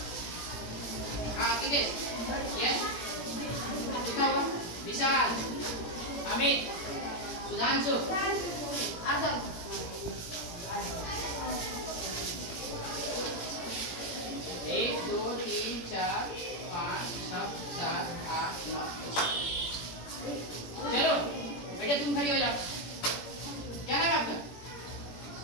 हाँ किधर, यस कितना हुआ, विशाल, अमित, सुधांशु, एक दो तीन चार पाँच छः सात आठ नौ। चलो बेटा तुम खड़ी हो जाओ। क्या नाम है आपका?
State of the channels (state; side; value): late; right; 17 ms